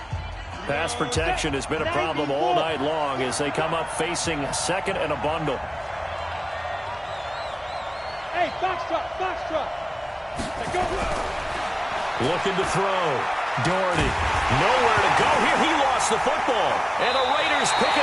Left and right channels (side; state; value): both; identical; correlation 1.00